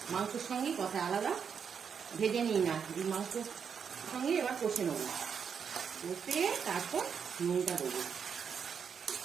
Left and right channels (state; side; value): quieter; left; 6.9 dB